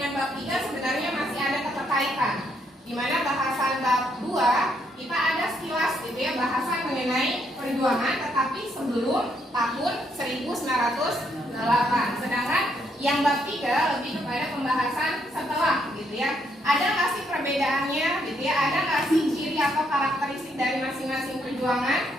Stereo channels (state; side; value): normal; both; correlation 0.74